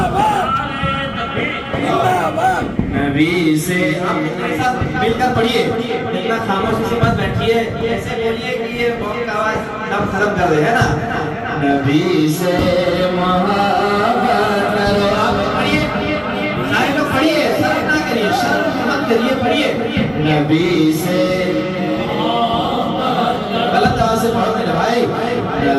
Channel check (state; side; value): identical; both; correlation 1.00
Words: نبی سے آپ میرے ساتھ مل کر پڑھیے، اتنا خاموشی سے مت بیٹھیے، ایسے بولیے کہ یہ بہت آواز دم ختم کر دے، ہے نا؟ نبی سے محبت کرو، آپ پڑھیے، سارے لوگ پڑھیے، شرم نہ کریے، شرم مت کریے، پڑھیے نبی سے غلط آواز سے پڑھو میرے بھائی،